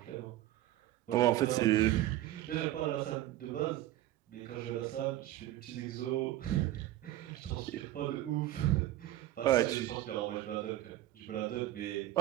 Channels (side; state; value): left; quieter; 14.6 dB